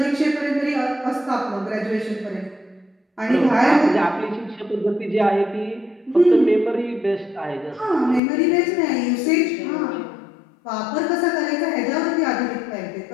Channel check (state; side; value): drops out; right; at 8.2 s